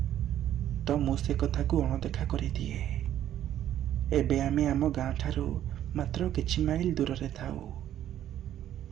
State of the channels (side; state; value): left; quieter; 11.5 dB